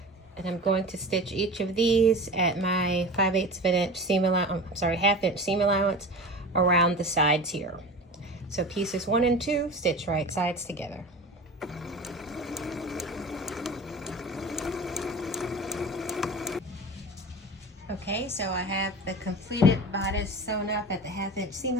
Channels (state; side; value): normal; both; correlation 0.33